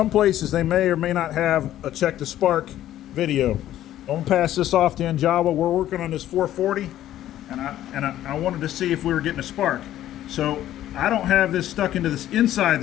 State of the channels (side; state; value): right; quieter; 12.8 dB